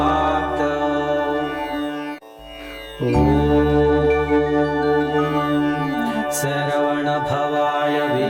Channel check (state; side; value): identical; both; correlation 1.00